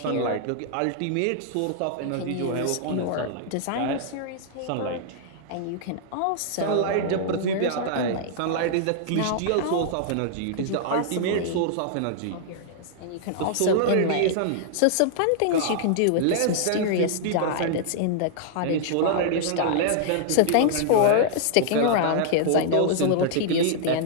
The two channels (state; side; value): different; both; correlation -0.01